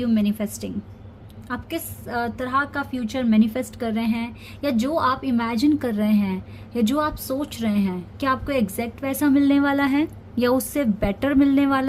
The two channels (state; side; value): identical; both; correlation 1.00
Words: manifesting. आप किस तरह का फ्यूचर मैनिफेस्ट कर रहे हैं, या जो आप इमेजिन कर रहे हैं या जो आप सोच रहे हैं, क्या आपको एग्जैक्ट वैसा मिलने वाला है या उससे बेटर मिलने